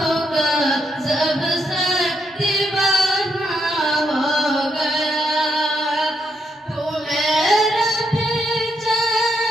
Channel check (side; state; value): both; normal; correlation 0.78